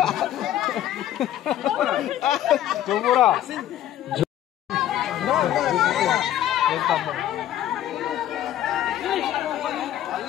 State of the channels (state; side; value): quieter; right; 12.2 dB